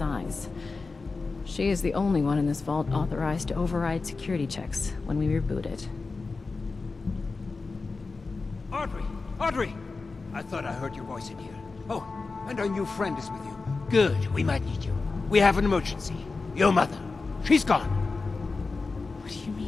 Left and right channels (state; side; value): quieter; right; 4.0 dB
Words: She is the only one in this vault authorized to override security checks when we reboot it. Audrey! Audrey! I thought I heard your voice in here. Oh, and our new friend is with you. Good, we might need you. We have an emergency. Your mother. She's gone. What do you